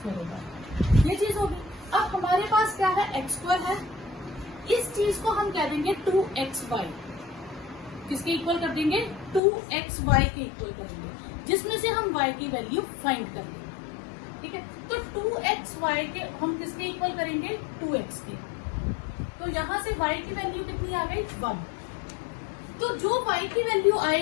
होगा। ये चीज होगी। अब हमारे पास क्या है, x² है, इस चीज को हम कह देंगे 2xy, किसके इक्वल कर देंगे, 2xy के इक्वल करेंगे, जिसमें से हम y की वैल्यू फाइंड कर लेंगे। ठीक है, तो 2xy के हम किसके इक्वल करेंगे, 2x के। तो यहाँ से y की वैल्यू कितनी आ गई, 1। तो जो y की वैल्यू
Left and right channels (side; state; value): right; drops out; at 9.4 s